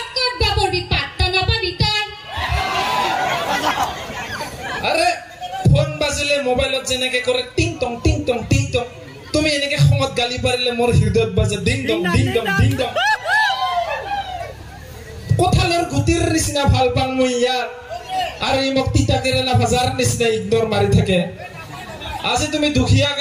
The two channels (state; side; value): identical; both; correlation 1.00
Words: বাবৰ বিপাত্তা নাপাবি তই আৰে ফোন বাজিলে মোবাইলত যেনেকে কৰে টিং টং টিং টং টিং টং তুমি এনেকে খঙত গালি পাৰিলে মোৰ হৃদয়ত বাজে ding dong ding dong ding dong কোঠালৰ গুটিৰ নিচিনা ভাল পাং মই ইয়াৰ আৰু ই মোক তিতা কেৰেলা ভাজাৰ নিচিনা ইগনোৰ মাৰি থাকে আজি তুমি দুখীয়া